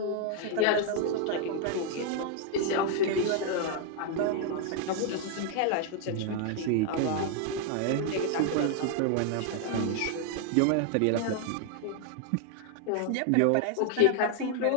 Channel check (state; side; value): different; both; correlation 0.00